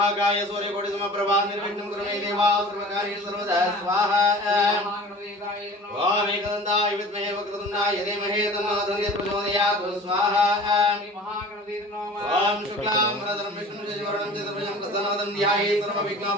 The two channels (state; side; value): normal; both; correlation 0.42